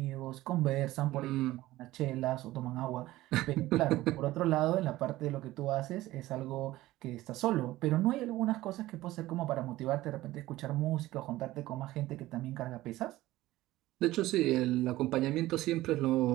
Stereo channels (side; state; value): left; quieter; 16.8 dB